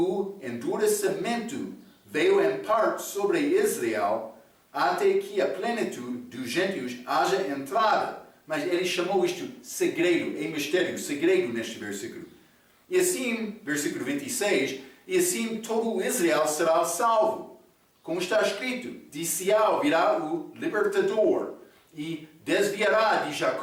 endurecimento veio em parte sobre Israel, até que a plenitude dos gentios haja entrada. Mas ele chamou isto segredo, é mistério, segredo neste versículo. E assim, versículo 26, e assim todo Israel será salvo. Como está escrito: de Sião virá o libertador, e desviará de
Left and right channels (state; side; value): identical; both; correlation 1.00